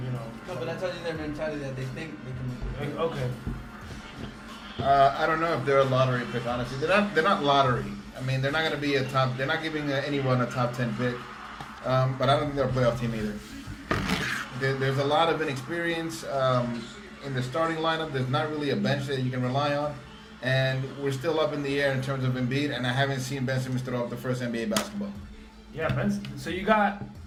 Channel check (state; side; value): identical; both; correlation 1.00